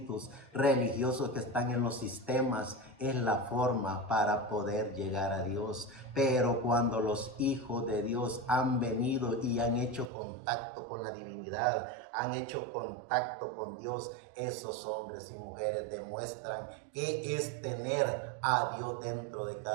religiosos que están en los sistemas, es la forma para poder llegar a Dios. Pero cuando los hijos de Dios han venido y han hecho contacto con la divinidad, han hecho contacto con Dios, esos hombres y mujeres demuestran que es tener a Dios dentro de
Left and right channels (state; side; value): drops out; left; at 10.1 s